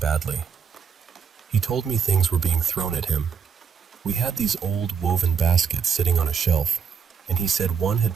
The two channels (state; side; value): quieter; left; 6.7 dB